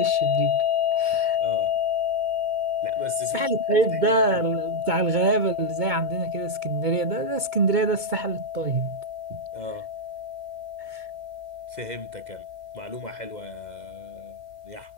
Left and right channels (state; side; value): late; left; 2.2 ms